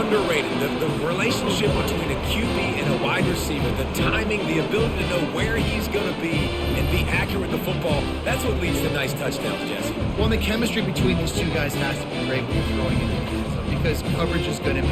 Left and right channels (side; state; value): both; identical; correlation 1.00